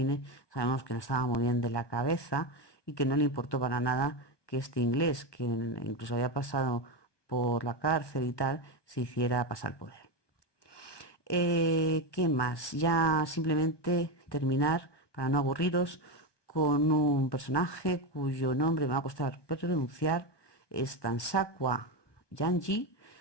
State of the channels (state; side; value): late; right; 1.2 ms